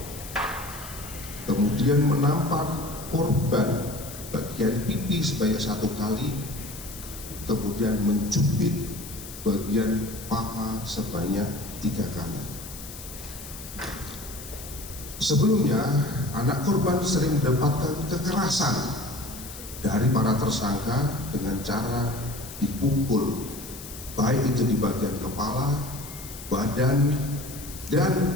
kemudian menampar korban bagian pipi sebanyak 1 kali, kemudian mencubit bagian paha sebanyak 3 kali. Sebelumnya, anak korban sering mendapatkan kekerasan dari para tersangka dengan cara dipukul, baik itu di bagian kepala, badan, dan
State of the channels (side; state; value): left; noise; hiss, 13 dB below the sound